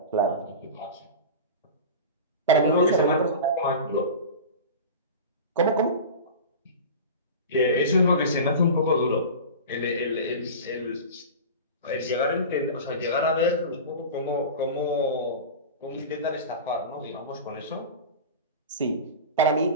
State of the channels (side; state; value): both; inverted; correlation -0.31